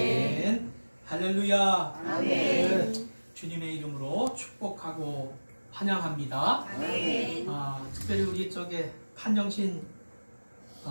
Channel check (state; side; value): inverted; both; correlation -1.00